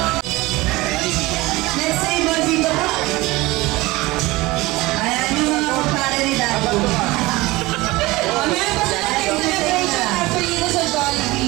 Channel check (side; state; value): left; quieter; 20.7 dB